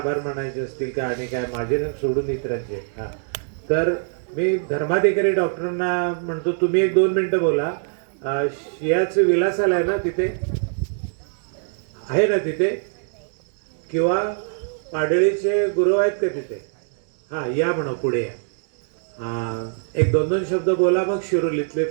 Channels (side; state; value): left; silent; digital silence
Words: मानायचे असतील का आणि काय माझे ना सोडून इतरांचे. हां, तर मी धर्माधिकारी डॉक्टरांना म्हणतो तुम्ही 1-2 मिनिटं बोला. शियाचं विलास आलाय ना तिथे, आहे ना तिथे, किंवा पाडळीचे गुरु आहेत का तिथे? हां, या म्हणा पुढे या. 1-2 शब्द बोला, मग शिरोलीतले